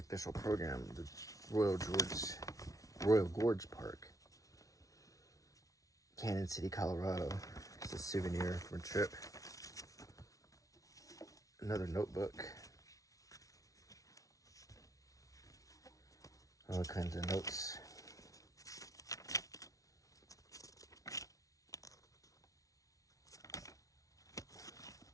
program, the Royal Gorge Park, Canyon City, Colorado. It's a souvenir from a trip. Another notebook. All kinds of notes.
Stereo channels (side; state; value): right; late; 0.17 ms